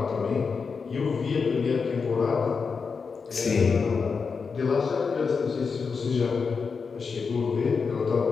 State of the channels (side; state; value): right; quieter; 5.3 dB